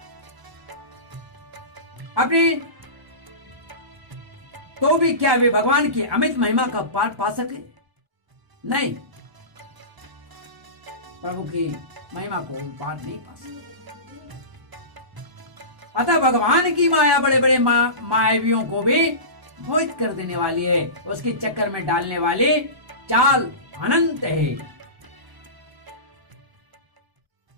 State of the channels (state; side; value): late; left; 1.1 ms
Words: अपनी तो भी क्या वे भगवान की अमित महिमा का पाठ पा सके? नहीं, प्रभु की महिमा को पाठ नहीं पा सके। अतः भगवान की माया बड़े बड़े मायावियों को भी मोहित कर देने वाली है, उसके चक्कर में डालने वाली चाल अनंत है।